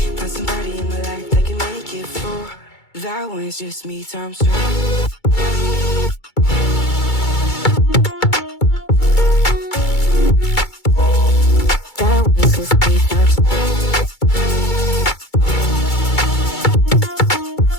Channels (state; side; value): late; right; 2.3 ms